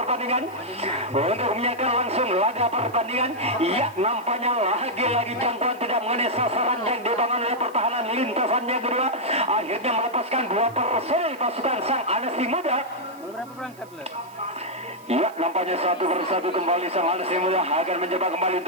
untuk menyaksikan langsung laga pertandingan. Ya, nampaknya lagi-lagi jangkauan tidak mengenai sasaran yang dibangun oleh pertahanan lintasannya kedua. Akhirnya melepaskan 2 personil pasukan sang Anasi Muda. Berapa berangkat lah? Ya, nampaknya satu persatu kembali sang Anasi Muda akan mencoba kembali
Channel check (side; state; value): right; noise; hiss, 26 dB below the sound